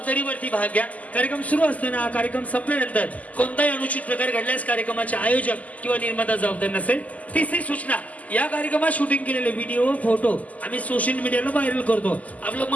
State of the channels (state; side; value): late; right; 0.074 ms